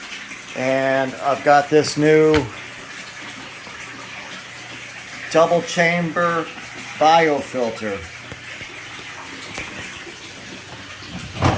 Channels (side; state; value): both; identical; correlation 1.00